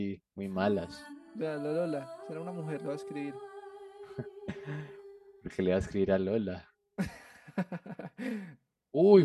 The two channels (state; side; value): identical; both; correlation 1.00